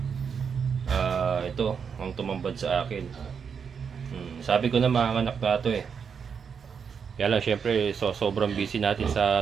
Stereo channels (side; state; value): left; quieter; 6.5 dB